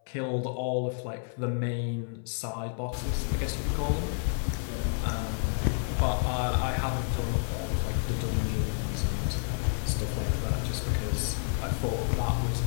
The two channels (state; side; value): silent; right; 58 dB below the other